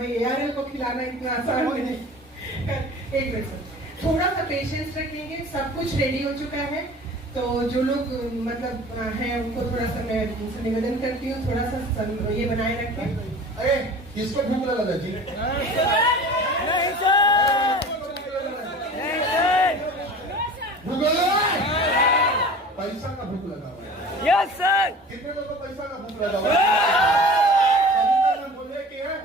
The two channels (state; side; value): normal; both; correlation 0.40